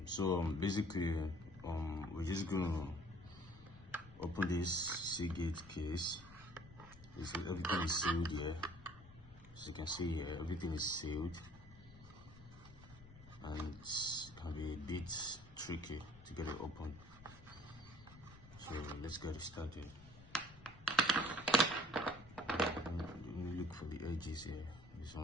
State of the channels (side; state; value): left; noise; rumble, 20 dB below the sound